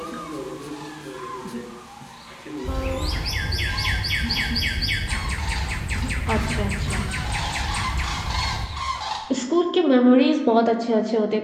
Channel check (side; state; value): both; identical; correlation 1.00